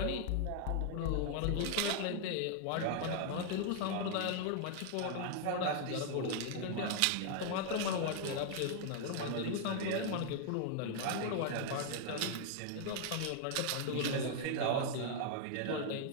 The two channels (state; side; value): different; both; correlation 0.00